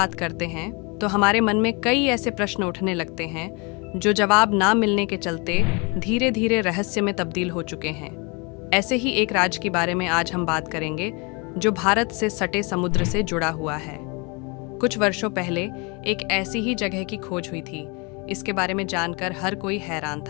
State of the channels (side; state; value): right; quieter; 30.1 dB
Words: करते हैं तो हमारे मन में कई ऐसे प्रश्न उठने लगते हैं जो जवाब ना मिलने के चलते धीरे धीरे रहस्य में तब्दील हो चुके हैं। ऐसे ही एक राज्य के बारे में आज हम बात करेंगे जो भारत से सटे समुद्र से जुड़ा हुआ है। कुछ वर्षों पहले एक ऐसी ही जगह की खोज हुई थी। इसके बारे में जानकर हर कोई हैरान